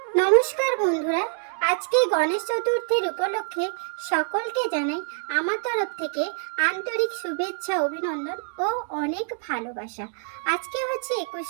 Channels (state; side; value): silent; left; digital silence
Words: নমস্কার বন্ধুরা, আজকে গণেশ চতুর্থীর উপলক্ষে সকলকে জানাই আমার তরফ থেকে আন্তরিক শুভেচ্ছা, অভিনন্দন ও অনেক ভালোবাসা। আজকে হচ্ছে